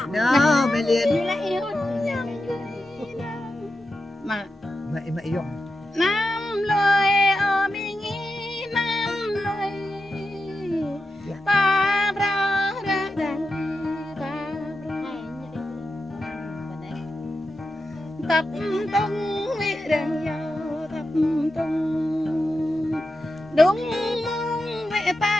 nó mày liền mà mày dùng nam lời ở mình nam lời ta ra ra ta tập tung vị rằng giàu tập tung đúng mong mẹ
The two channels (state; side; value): normal; both; correlation 0.89